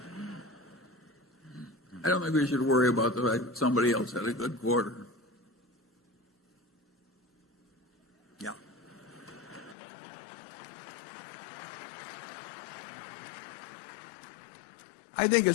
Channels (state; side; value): drops out; right; at 9.8 s